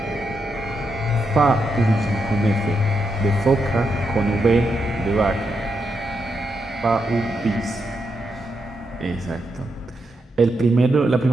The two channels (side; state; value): both; normal; correlation 0.83